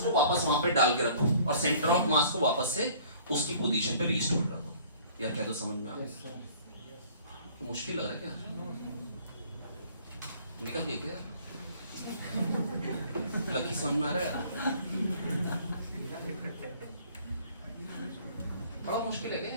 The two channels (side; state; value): both; inverted; correlation -0.53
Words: वापस वहां पे डाल के रखो और सेंटर ऑफ मास को वापस से उसकी पोजीशन पे रिस्टोर कर दो। यार क्या तो समझ में आ गया, तो मुश्किल लग रहा है क्या, निकल गई क्या, लकी समझ में आ रहा है, बड़ा मुश्किल है क्या,